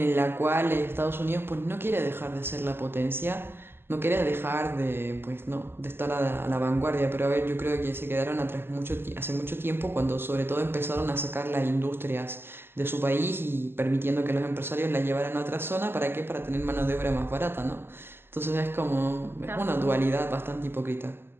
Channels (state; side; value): late; left; 0.11 ms